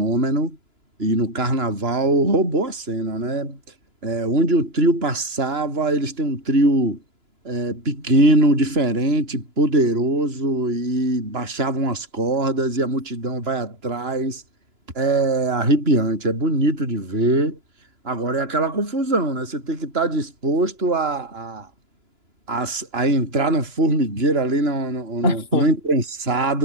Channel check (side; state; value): left; late; 2.9 ms